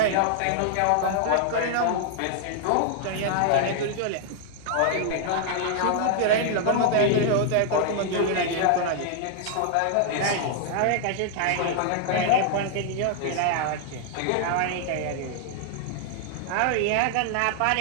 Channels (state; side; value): different; both; correlation 0.00